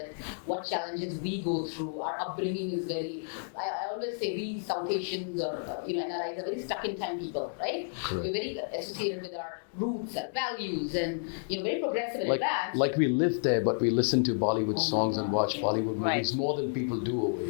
what challenges we go through. Our upbringing is very, I always say we South Asians or, NRIs are very stuck in time people, right? Correct. We're very associated with our roots, our values, and, very progressive and advanced. Like we live there, but we listen to Bollywood Oh my songs and God, watch yeah. Bollywood Right. movies more than people do over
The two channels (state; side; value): silent; right; digital silence